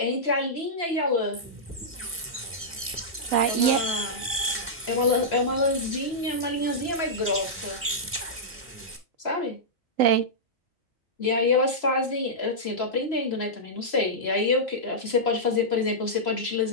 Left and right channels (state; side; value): normal; both; correlation -0.11